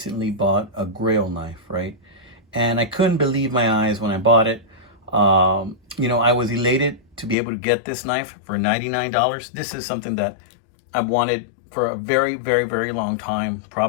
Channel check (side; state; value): right; drops out; at 7.4 s